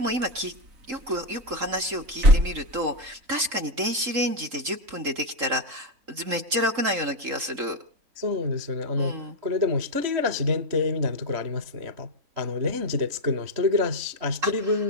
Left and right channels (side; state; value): left; late; 3.8 ms